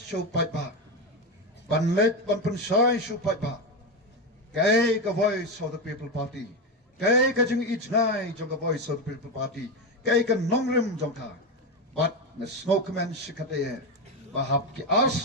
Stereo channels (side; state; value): both; normal; correlation 0.14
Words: phaipa banlet ban penshai shu phaipa kai ka voice of the people party kai ka jing each ngai jong ka voice of the people party kai ka nongrim jong ka but na Sngewnoh shikate bahap ki